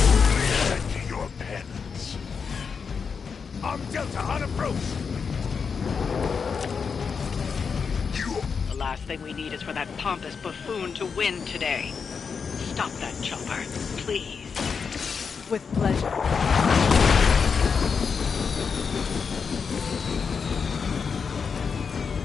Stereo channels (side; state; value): right; quieter; 5.8 dB